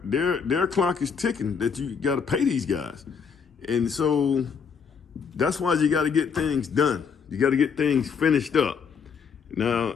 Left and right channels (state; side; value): quieter; right; 6.3 dB